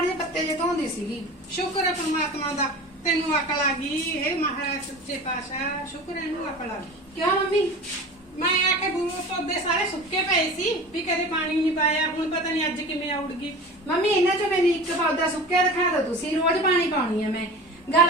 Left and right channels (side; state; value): both; normal; correlation 0.35